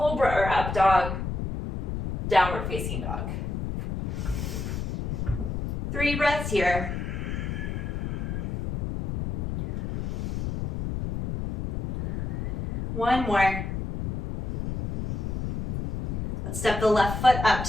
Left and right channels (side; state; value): left; noise; rumble, 3 dB below the sound